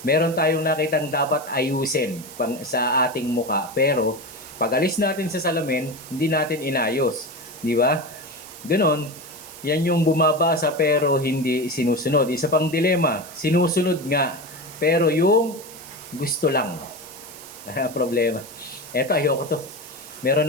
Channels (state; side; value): noise; right; hiss, 16 dB below the sound